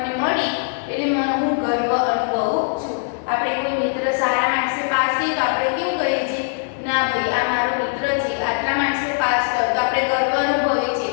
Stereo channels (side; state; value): right; silent; 57 dB below the other